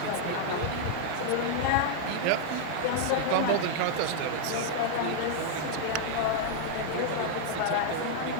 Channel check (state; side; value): different; both; correlation -0.01